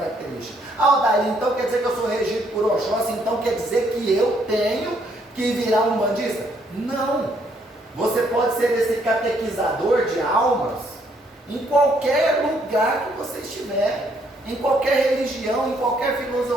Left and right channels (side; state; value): both; normal; correlation 0.69